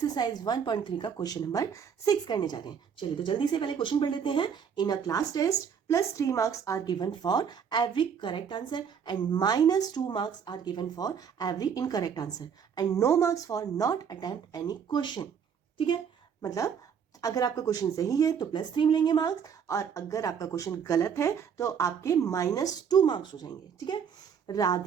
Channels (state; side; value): quieter; left; 7.3 dB